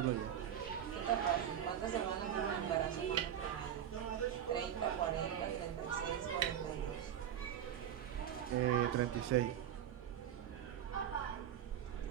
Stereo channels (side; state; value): left; quieter; 10.0 dB